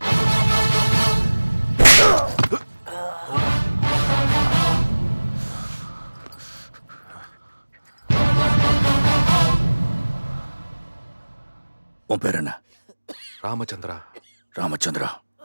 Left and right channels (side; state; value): both; inverted; correlation -1.00